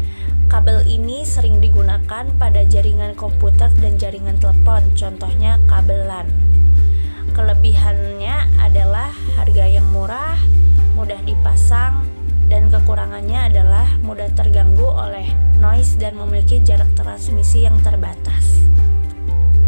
Kabel ini sering digunakan pada jaringan komputer dan jaringan telepon, contohnya kabel LAN. Kelebihannya adalah harga yang murah, mudah dipasang, dan kekurangannya adalah mudah terganggu oleh noise dan memiliki jarak transmisi yang terbatas.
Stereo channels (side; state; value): both; inverted; correlation -1.00